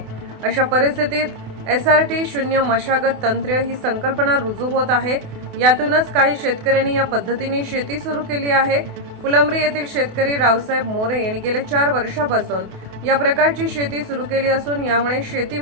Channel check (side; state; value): left; late; 28 ms